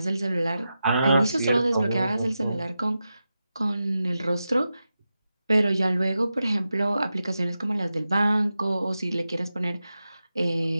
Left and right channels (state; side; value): inverted; both; correlation -0.91